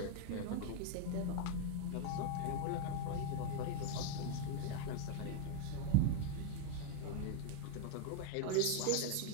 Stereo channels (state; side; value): different; both; correlation 0.01